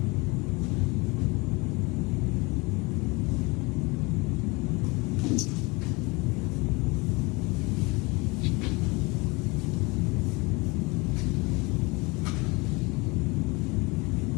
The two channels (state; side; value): quieter; right; 26.2 dB